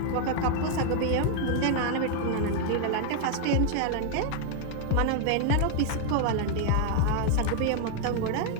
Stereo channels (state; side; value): different; both; correlation 0.00